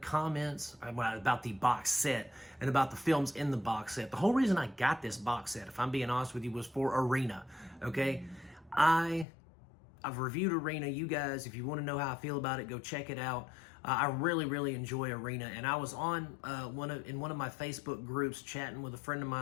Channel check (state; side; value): drops out; right; at 9.2 s